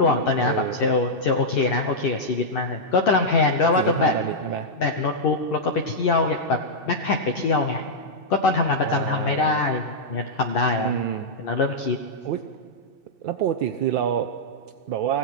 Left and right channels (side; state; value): right; late; 2.6 ms